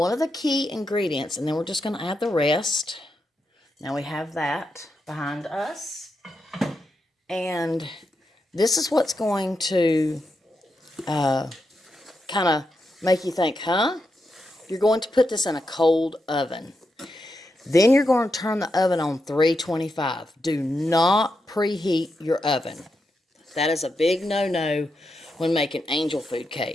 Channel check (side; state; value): both; normal; correlation 0.85